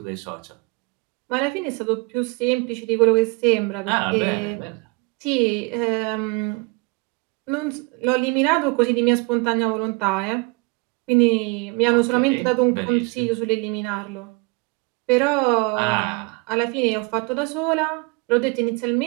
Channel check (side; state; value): left; quieter; 28.9 dB